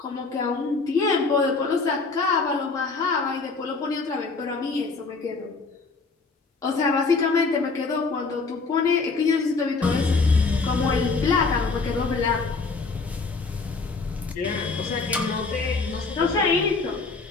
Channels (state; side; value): quieter; right; 4.2 dB